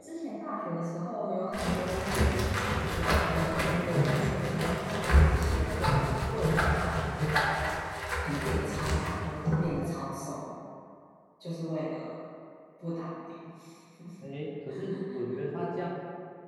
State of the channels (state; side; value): identical; both; correlation 1.00